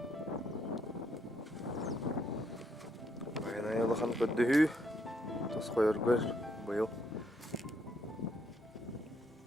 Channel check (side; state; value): both; normal; correlation 0.73